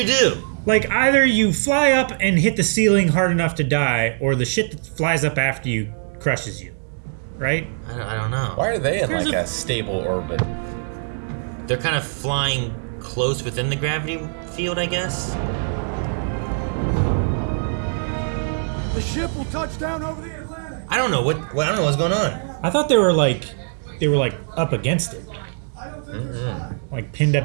do? Like, either you fly up and hit the ceiling hard enough to die, or the shit that flies up after you crushes you. Right? I don't know. Why are they in There's like a stable orbit? They're kind of flying close within the gravity field, I guess. The ship will touch down over the Atlantic. I don't know I don't know what's going on. I thought they were like up against it. Like pinned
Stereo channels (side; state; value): left; silent; digital silence